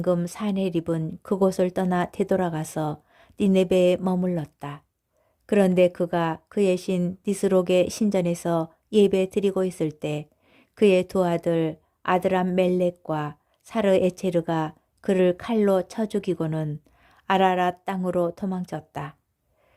산헤립은 그곳을 떠나 되돌아가서 니네베에 머물렀다. 그런데 그가 그의 신 니스록의 신전에서 예배 드리고 있을 때 그의 두 아들 아드람 멜렉과 사르 에체르가 그를 칼로 쳐 죽이고는 아라랏 땅으로 도망쳤다.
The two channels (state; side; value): identical; both; correlation 1.00